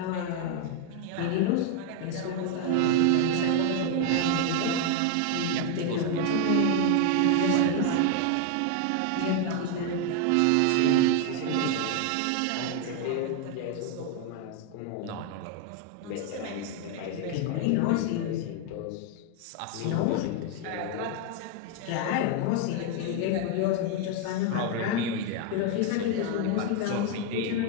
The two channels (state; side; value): different; both; correlation 0.01